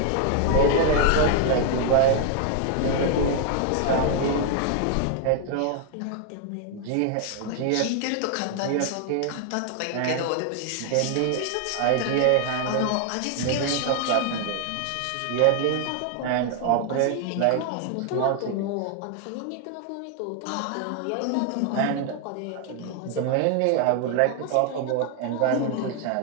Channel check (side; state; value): both; different; correlation 0.00